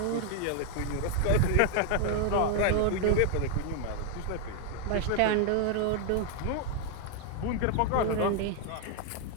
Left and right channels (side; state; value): both; different; correlation 0.00